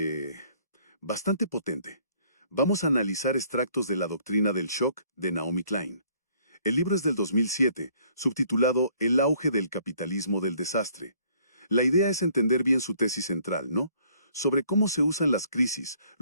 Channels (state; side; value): inverted; both; correlation -0.61